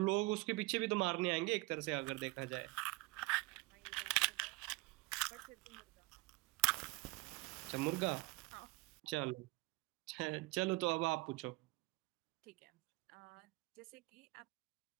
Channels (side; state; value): left; quieter; 23.6 dB